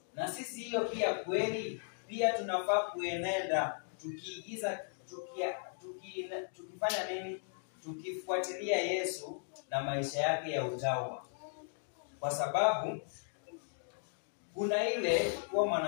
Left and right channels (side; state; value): right; silent; digital silence